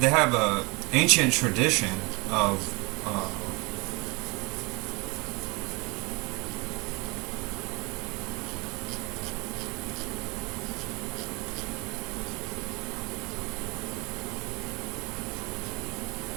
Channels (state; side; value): quieter; left; 27.5 dB